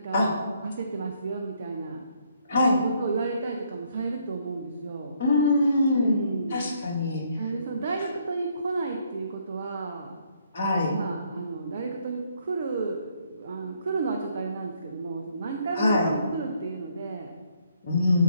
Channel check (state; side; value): inverted; both; correlation -0.69